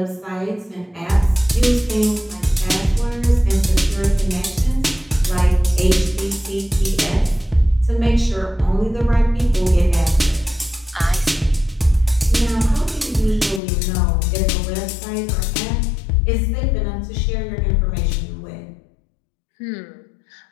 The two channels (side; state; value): right; drops out; at 13.6 s